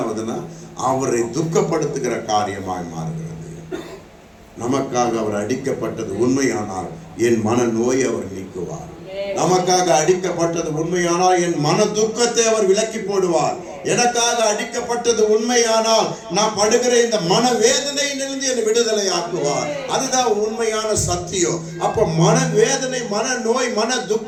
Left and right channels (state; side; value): identical; both; correlation 1.00